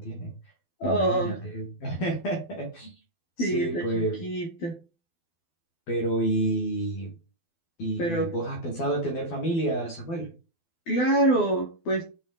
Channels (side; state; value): right; late; 12 ms